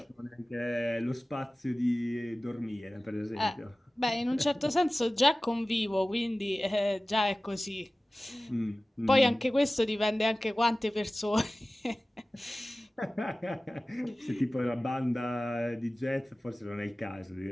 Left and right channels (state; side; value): normal; both; correlation 0.97